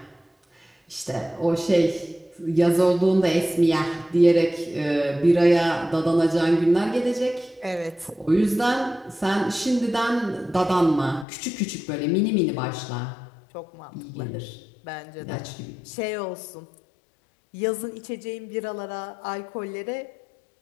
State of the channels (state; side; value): drops out; right; at 11.2 s